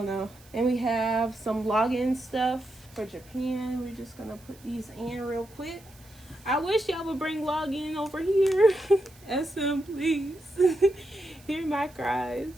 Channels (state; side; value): noise; right; hiss, 25 dB below the sound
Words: know. And we have some login stuff for Japan. We're just gonna put these in real quick. I wish y'all would bring login over here. SM, please. Hear my cries.